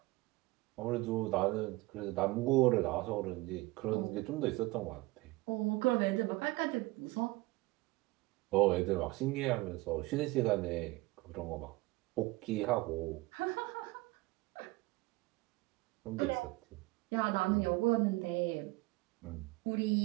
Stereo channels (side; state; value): left; quieter; 21.3 dB